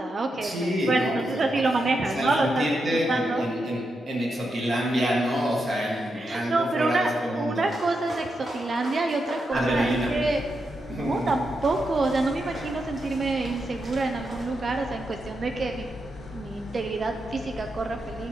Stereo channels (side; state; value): both; normal; correlation 0.85